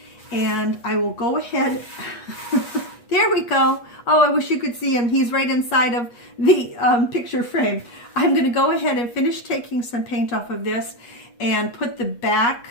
and I will go ahead. There we go. Oh, I wish you could see him. He's right inside of the picture frame. I'm going to go ahead and finish taking some paint off of this and put the back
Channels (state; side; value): late; right; 8.3 ms